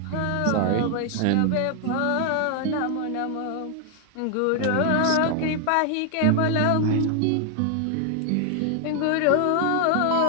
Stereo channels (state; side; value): different; both; correlation 0.00